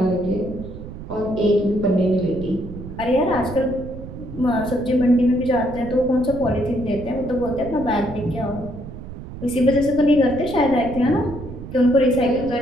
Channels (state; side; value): noise; right; rumble, 11 dB below the sound